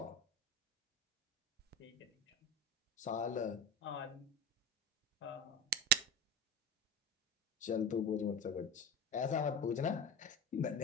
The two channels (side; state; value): both; normal; correlation 0.23